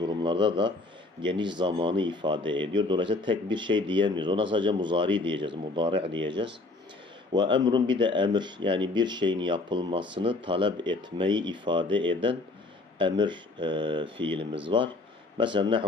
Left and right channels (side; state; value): right; quieter; 3.2 dB